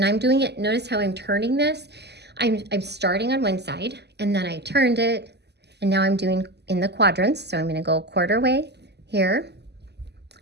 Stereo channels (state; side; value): late; left; 0.49 ms